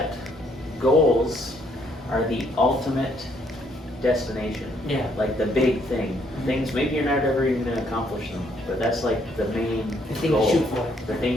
goals are the ultimate destination. Yeah. Like the big thing. Things, maybe you're not ever even going to accomplish them, but that's like the main The thing goal. you shoot for. The thing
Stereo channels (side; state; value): both; normal; correlation 0.69